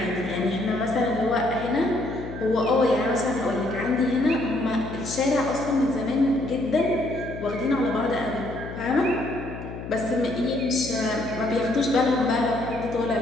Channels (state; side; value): noise; left; hum, 10 dB below the sound